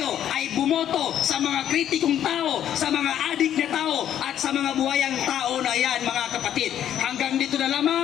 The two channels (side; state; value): right; quieter; 10.5 dB